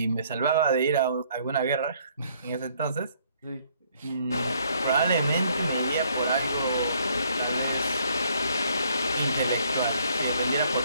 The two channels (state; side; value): inverted; both; correlation -0.65